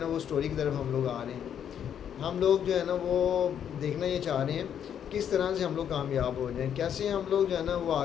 وہ سٹوری کی طرف ہم لوگ آ رہے ہیں۔ ہم لوگ جو ہے نا وہ دیکھنا یہ چاہ رہے ہیں کس طرح سے ہم لوگ کامیاب ہو جائیں، کیسے ہم لوگ جو ہے نا وہ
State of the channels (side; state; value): right; quieter; 8.9 dB